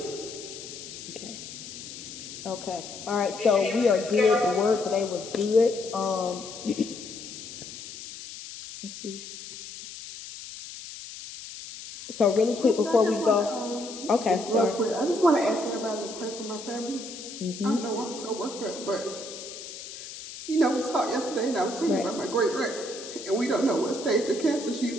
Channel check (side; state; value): left; noise; hiss, 12 dB below the sound